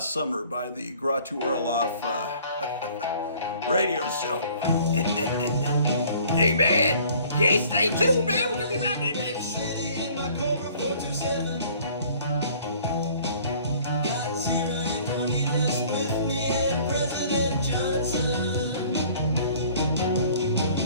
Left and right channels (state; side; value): inverted; both; correlation -0.53